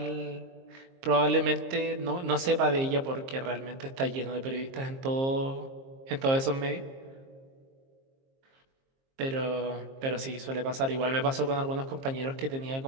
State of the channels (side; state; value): left; late; 22 ms